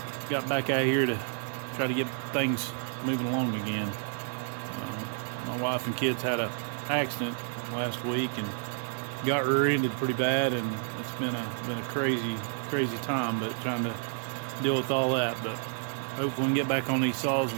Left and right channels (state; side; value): silent; left; 58 dB below the other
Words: back out here to try to get things moving along again. My wife and kids had an accident last week and got rear-ended pretty bad, and it's been a crazy time, but trying to deal with all that. But hopefully we can get back on these saws